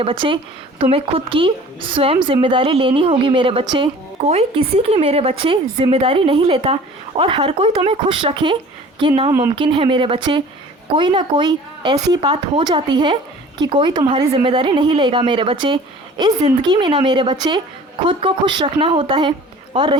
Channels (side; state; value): both; normal; correlation 0.46